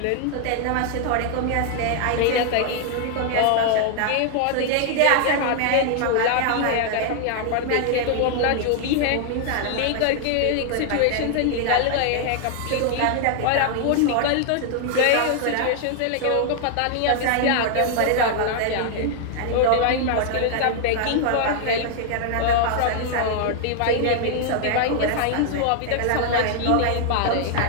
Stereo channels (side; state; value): both; different; correlation 0.00